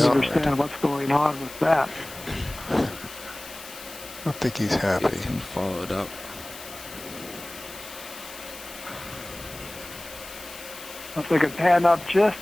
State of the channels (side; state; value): left; noise; hiss, 15 dB below the sound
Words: out. understand what's going on with that. I don't think he's happy. You can follow it up. If we could pan up just,